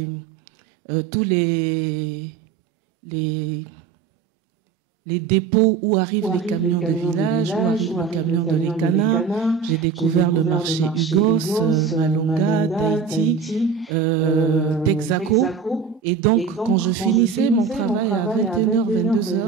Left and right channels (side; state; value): left; quieter; 5.9 dB